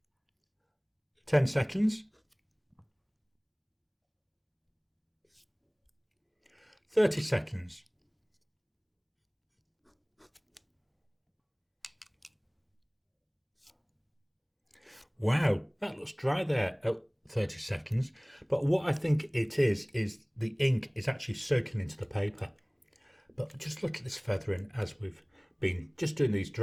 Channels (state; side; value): identical; both; correlation 1.00